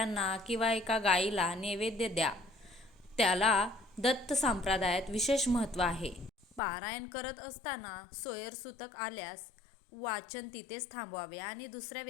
किंवा एका गायीला नैवेद्य द्या. त्याला दत्त संप्रदायात विशेष महत्त्व आहे. पारायण करत असताना सोयरसूतक आल्यास वाचन तिथेच थांबवावे आणि दुसऱ्या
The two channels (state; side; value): drops out; right; at 6.6 s